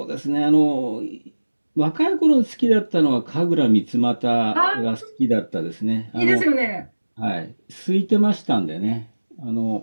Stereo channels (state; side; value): inverted; both; correlation -1.00